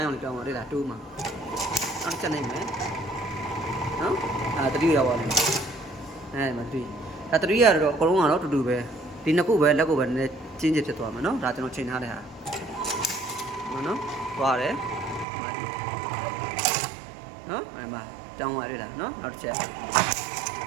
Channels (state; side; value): drops out; left; at 15.2 s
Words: းရောင်လေးပြောင်းသွားတွေ့လား2မှာနောက်ချက်နိုင်မယ်နော်တတိရောက်သွားတယ်မတတိဒါတတိရတော့အကုန်လုံးကတော့တူတူပဲဒီနှစ်ခုပဲလက်ကိုပဲနည်းနည်းကျင်းကျဖြစ်သွားမယ်နော်ဒါကျွန်တော်ချိန်ထားတဲ့ဟာနော်သွားတယ်နော်မှာတောင်းပါရလားနော်နောက်တစ်ချက်